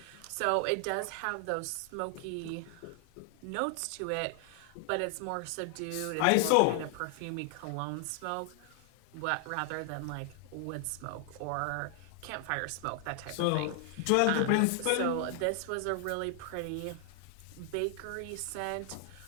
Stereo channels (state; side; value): different; both; correlation 0.00